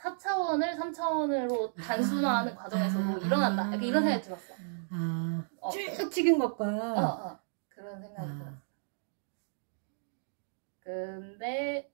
3차원으로 단순화하는 과정에서도 일어난다. 약간 이런 생각이 들었어. 쭉 찍은 것과 그런 생각이 들었어. 근데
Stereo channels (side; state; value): left; silent; digital silence